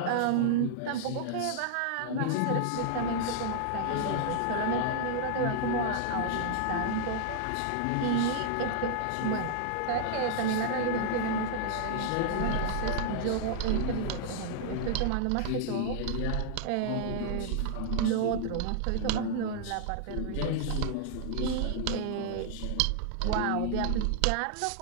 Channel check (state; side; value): different; both; correlation -0.01